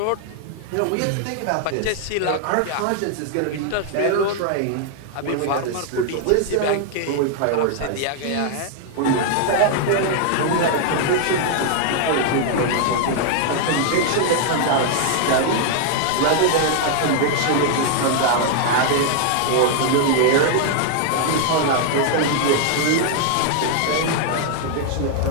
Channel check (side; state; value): both; different; correlation 0.00